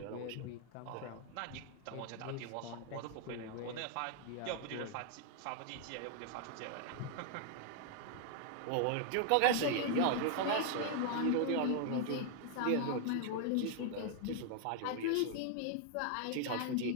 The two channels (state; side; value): different; both; correlation 0.00